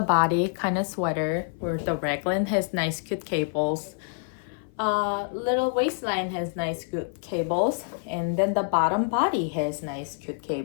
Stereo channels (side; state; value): right; silent; 57 dB below the other